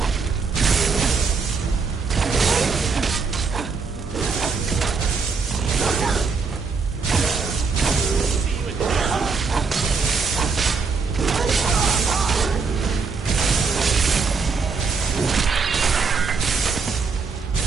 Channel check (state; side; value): quieter; left; 4.9 dB